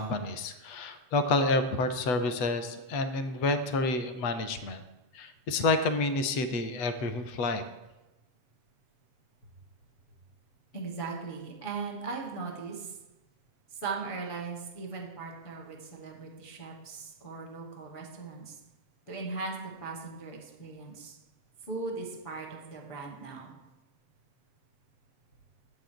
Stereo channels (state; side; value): late; right; 8.1 ms